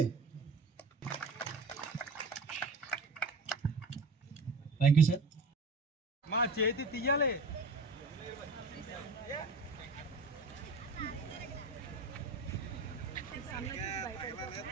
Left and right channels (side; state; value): left; quieter; 3.3 dB